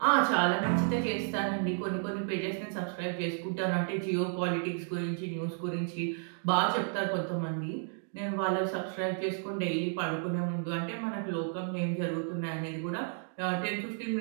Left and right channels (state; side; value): silent; left; 56 dB below the other